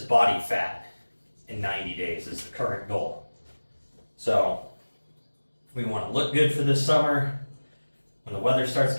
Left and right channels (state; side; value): inverted; both; correlation -1.00